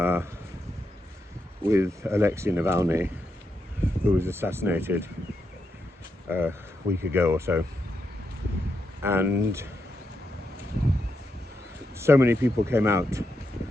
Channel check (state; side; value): normal; both; correlation 0.84